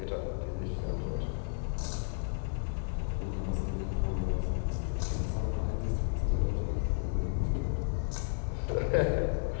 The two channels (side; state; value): right; silent; 56 dB below the other